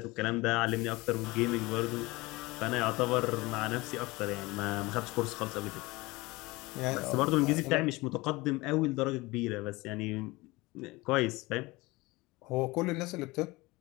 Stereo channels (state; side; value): quieter; right; 22.1 dB